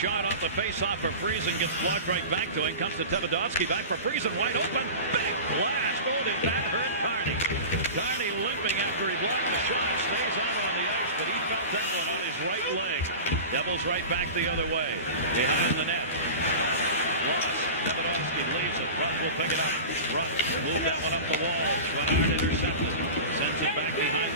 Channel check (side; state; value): both; inverted; correlation -0.31